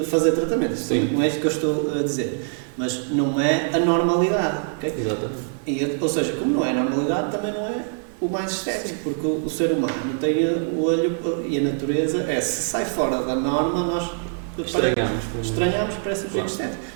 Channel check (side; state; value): left; silent; 61 dB below the other